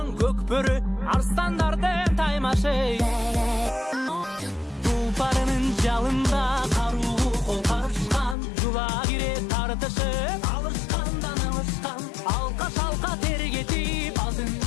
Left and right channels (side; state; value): right; drops out; at 8.3 s